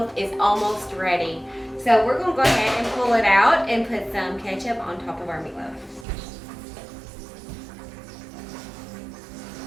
is almost ready. So we're going to go ahead and pull it out and put some ketchup on top of our meatloaf.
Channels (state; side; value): drops out; left; at 6.1 s